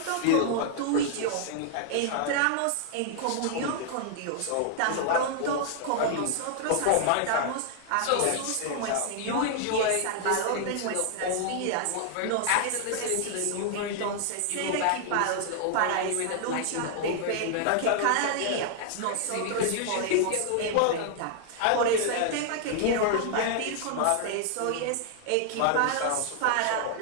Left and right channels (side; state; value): both; different; correlation 0.00